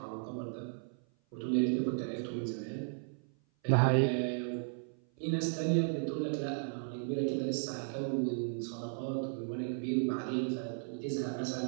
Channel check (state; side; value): silent; left; 54 dB below the other